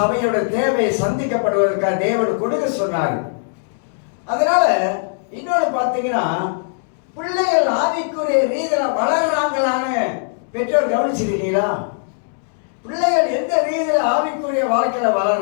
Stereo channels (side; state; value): right; silent; 66 dB below the other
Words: தேவை சந்திக்கப்படுவதற்காக தேவன் கொடுக்க சொன்னார். அதனால இன்னொன்று பார்த்தீங்கன்னா, பிள்ளைகள் ஆவிக்குரிய ரீதியில வளர்றாங்களான்னு பெற்றோர் கவனிச்சிருக்கீங்களா? பிள்ளைகள் எந்த ரீதியில ஆவிக்குரிய வாழ்க்கையில